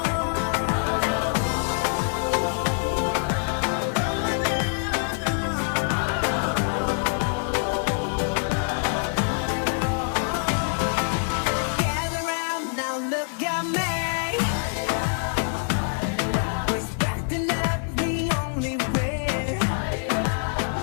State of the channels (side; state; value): right; silent; digital silence